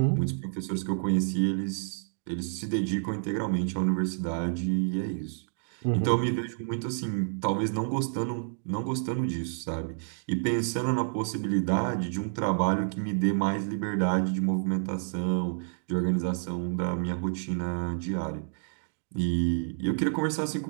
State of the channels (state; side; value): silent; left; digital silence